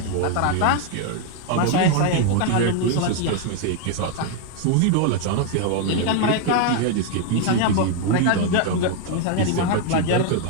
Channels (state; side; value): different; both; correlation 0.01